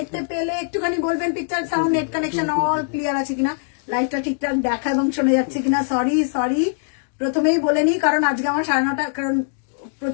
পেলে একটুখানি বলবেন picture, sound, net connection all clear আছে কিনা, লাইভটা ঠিকঠাক দেখা এবং শোনা যাচ্ছে কিনা। সরি প্রথমেই বলে নি, কারণ আজকে আমার 9:30, কারণ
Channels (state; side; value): silent; right; digital silence